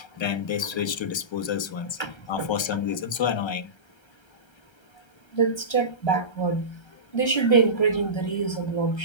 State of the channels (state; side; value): late; right; 1.3 ms